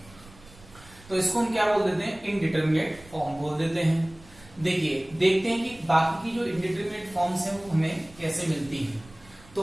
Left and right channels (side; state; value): right; noise; rumble, 23 dB below the sound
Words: तो इसको हम क्या बोल देते हैं, इनडिटरमिनेट फॉर्म बोल देते हैं। देखिए देखते हैं कि बाकी की जो इनडिटरमिनेट फॉर्म्स हैं वो हमें कैसे मिलती हैं। तो